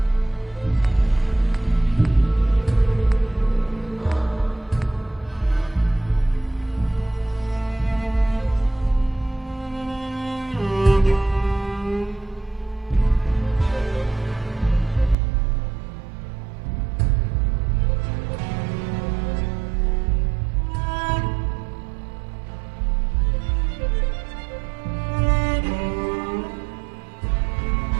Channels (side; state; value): left; drops out; at 15.2 s